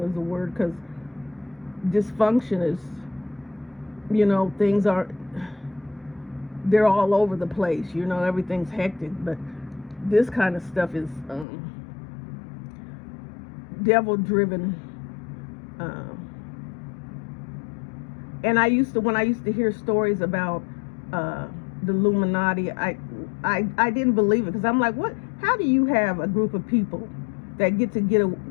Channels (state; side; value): drops out; right; at 11.5 s